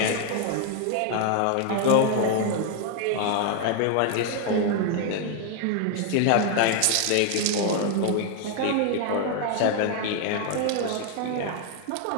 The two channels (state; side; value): different; both; correlation 0.00